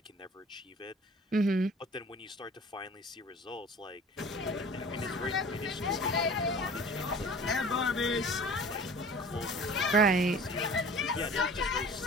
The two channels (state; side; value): normal; both; correlation 0.44